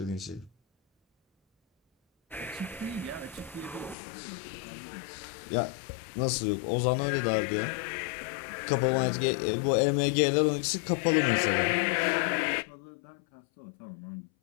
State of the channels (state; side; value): drops out; right; at 4.0 s